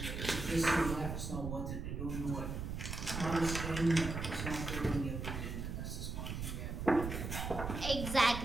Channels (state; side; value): noise; right; rumble, 5 dB below the sound